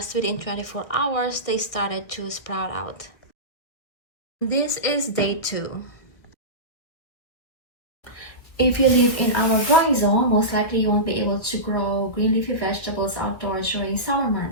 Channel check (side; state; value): right; late; 1.6 ms